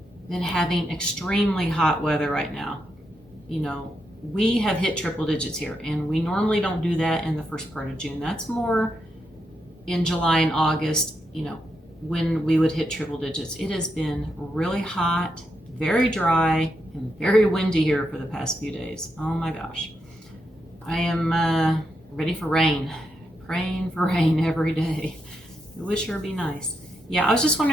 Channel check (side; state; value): both; normal; correlation 0.83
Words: been having extremely hot weather right now? You know, we have hit triple digits here, and we normally don't do that in the first part of June. That's more in July and August, you know, when we would hit triple digits. It has been really hot, very dry, and very windy here for the past few days. Oh my gosh. I am ready for rain, praying for rain every day. It would sure be nice. Yeah, I was just